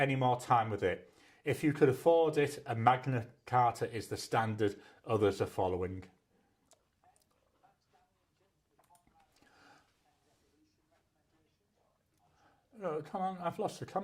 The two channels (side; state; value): both; identical; correlation 1.00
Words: time with it. If you could afford it, a Magna Carta is the standard others are following. Oh, come on, I've lost the